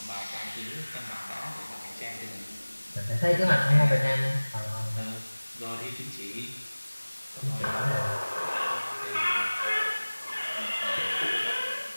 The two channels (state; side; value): inverted; both; correlation -1.00